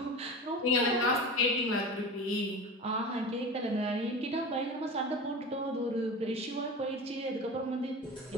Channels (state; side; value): normal; both; correlation 0.31